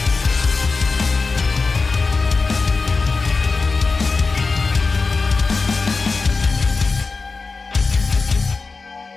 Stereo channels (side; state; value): right; quieter; 4.1 dB